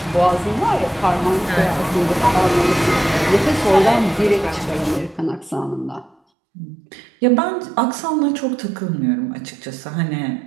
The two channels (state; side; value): drops out; left; at 6.2 s